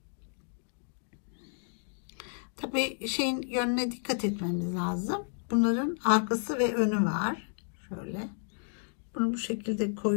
Tabii şeyin yönüne dikkat etmemiz lazım. Bunların arkası ve önü var. Şöyle. Bunu bu şekilde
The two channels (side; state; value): right; silent; digital silence